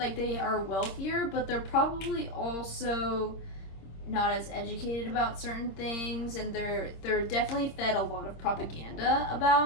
they are wealthier, but they're probably also not as educated about certain things, and they're definitely fed a lot of propaganda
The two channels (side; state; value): right; late; 26 ms